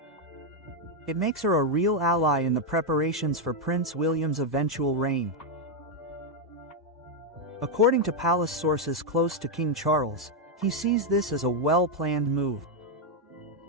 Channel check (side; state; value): both; normal; correlation 0.02